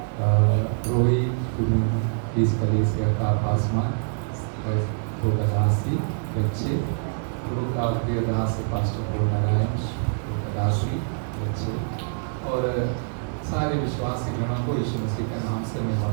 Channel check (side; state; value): left; silent; digital silence